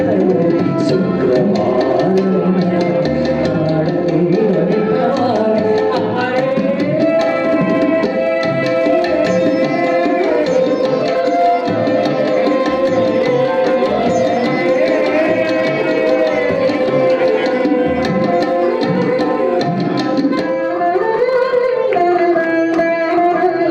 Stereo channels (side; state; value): both; identical; correlation 1.00